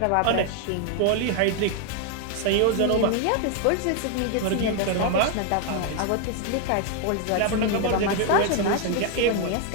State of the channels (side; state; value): both; different; correlation 0.00